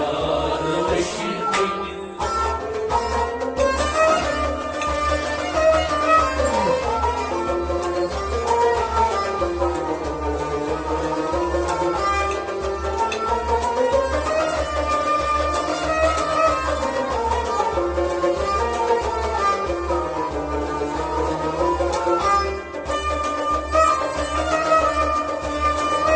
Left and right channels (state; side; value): identical; both; correlation 1.00